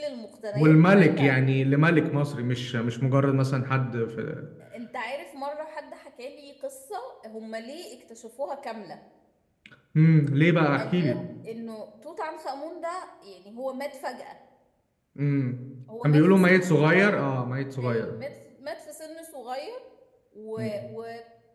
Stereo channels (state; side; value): identical; both; correlation 1.00